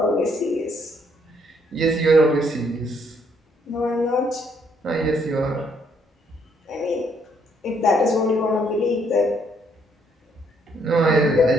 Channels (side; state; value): both; normal; correlation 0.70